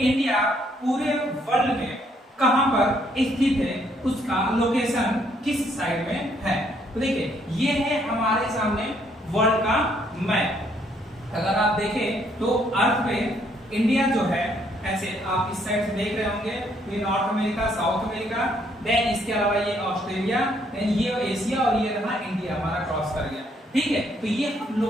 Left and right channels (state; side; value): normal; both; correlation 0.69